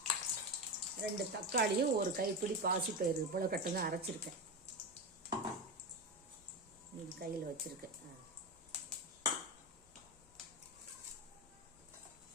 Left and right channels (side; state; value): left; noise; rumble, 28 dB below the sound